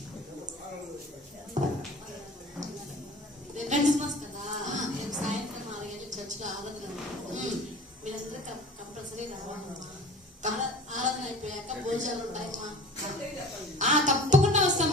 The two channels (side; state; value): both; normal; correlation 0.41